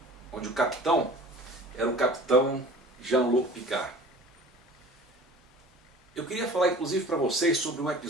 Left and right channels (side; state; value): both; normal; correlation 0.44